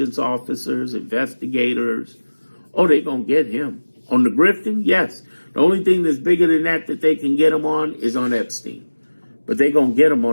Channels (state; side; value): inverted; both; correlation -1.00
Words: officers, investigators. Oh, they're going to get him. On the grifting, yes. The only thing that's bigger than that they can get him on is on Epstein. But they're going to get him